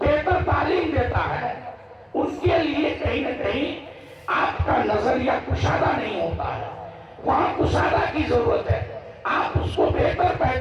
تعلیم دیتا ہے، ان کے لیے کہیں نہ کہیں آپ کا نظریہ کشادہ نہیں ہوتا ہے، وہاں کشادہ کی ضرورت ہے۔ آپ اس کو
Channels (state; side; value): identical; both; correlation 1.00